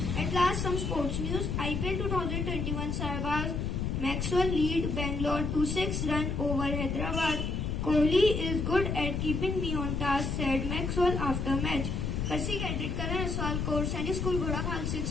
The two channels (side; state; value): left; noise; rumble, 1 dB below the sound